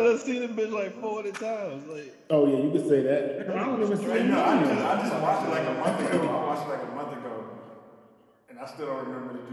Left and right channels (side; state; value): both; identical; correlation 1.00